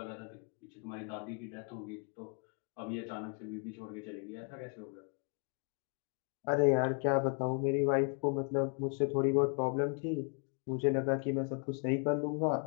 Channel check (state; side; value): quieter; right; 38.3 dB